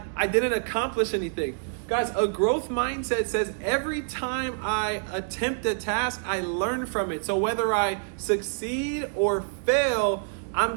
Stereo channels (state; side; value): silent; left; digital silence